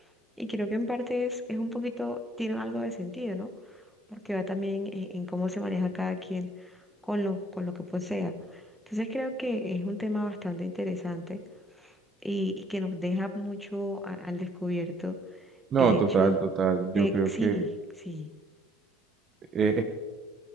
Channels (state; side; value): normal; both; correlation 0.64